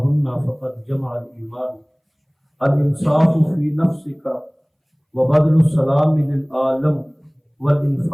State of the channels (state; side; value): identical; both; correlation 1.00